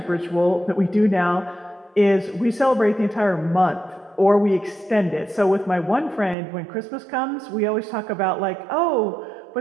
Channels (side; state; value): left; drops out; at 6.4 s